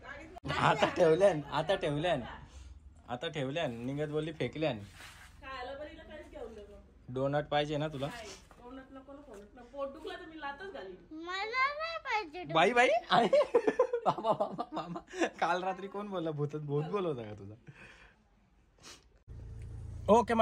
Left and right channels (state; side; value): identical; both; correlation 1.00